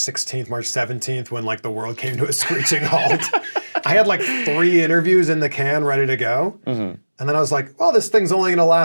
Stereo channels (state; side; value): inverted; both; correlation -1.00